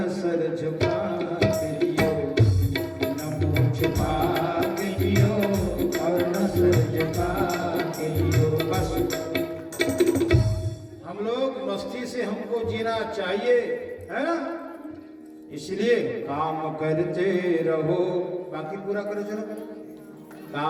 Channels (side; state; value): both; identical; correlation 1.00